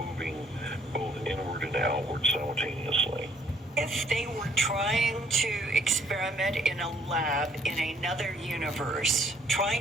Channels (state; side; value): normal; both; correlation 0.64